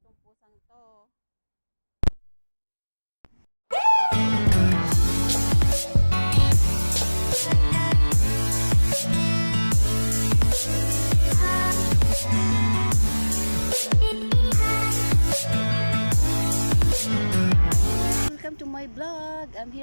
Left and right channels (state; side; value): inverted; both; correlation -1.00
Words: tong pusang to. Welcome to my vlog. I'm